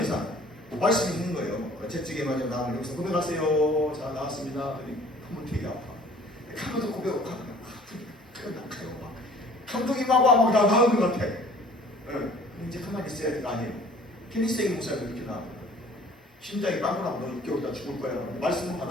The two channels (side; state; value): both; normal; correlation 0.52